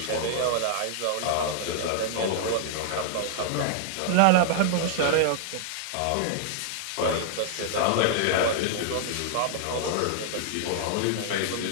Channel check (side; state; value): both; different; correlation -0.01